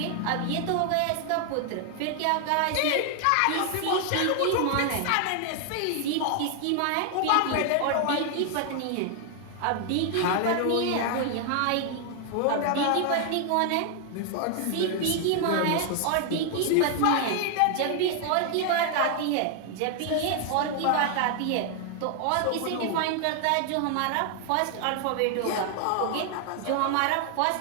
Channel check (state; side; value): different; both; correlation 0.00